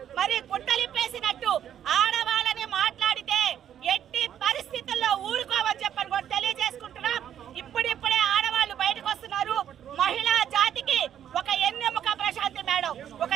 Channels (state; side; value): quieter; left; 9.9 dB